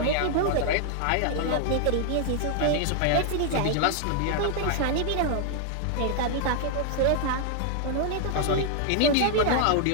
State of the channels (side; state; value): both; different; correlation 0.00